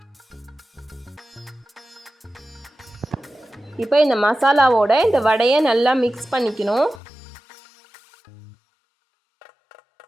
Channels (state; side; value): drops out; right; at 7.0 s